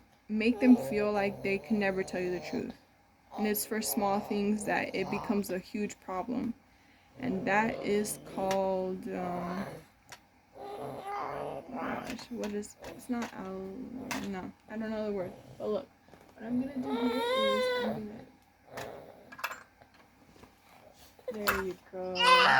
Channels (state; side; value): identical; both; correlation 1.00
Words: make them feel like they can never tell you the truth. And it's for small things that it becomes a huge problem. And that is called, gosh, what is, it's not no, I don't know the word. But look, what I'm gonna do here is I'm gonna, there you go.